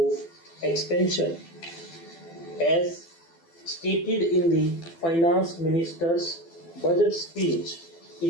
expansion. As stated in the Finance Minister's budget speech,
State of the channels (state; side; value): late; right; 12 ms